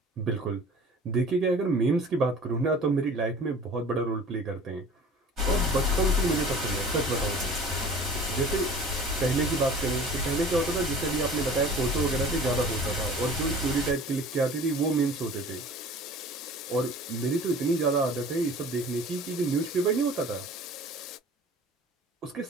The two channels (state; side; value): normal; both; correlation 0.44